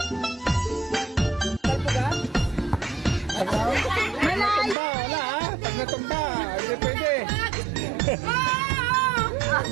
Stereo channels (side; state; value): left; drops out; at 4.8 s